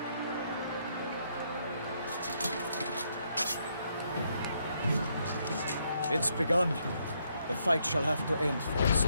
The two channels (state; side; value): inverted; both; correlation -0.74